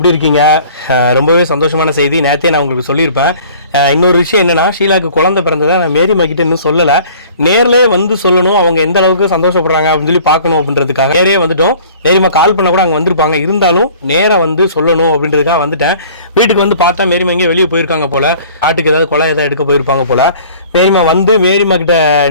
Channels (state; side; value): inverted; both; correlation -0.50